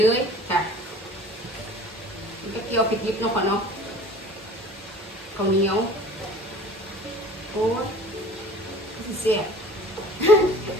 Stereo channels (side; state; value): both; normal; correlation 0.45